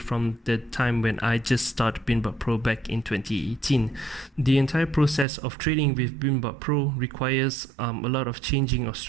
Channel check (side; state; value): left; drops out; at 5.2 s